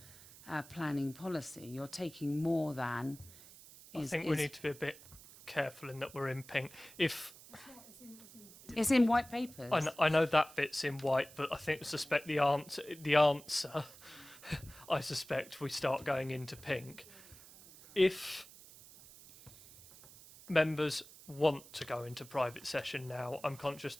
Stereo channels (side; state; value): right; noise; hiss, 19 dB below the sound